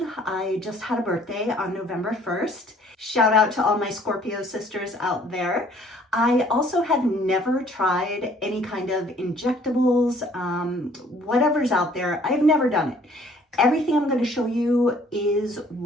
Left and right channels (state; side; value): normal; both; correlation 0.58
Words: I just had a birthday on November 1st. Shout out to all my Scorpio sisters out there. I also have never tried any kind of injectables, whatever's out there. I've never done it. Everything I'm going to show you is